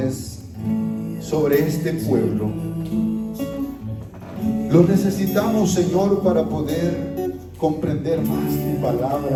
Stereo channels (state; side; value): identical; both; correlation 1.00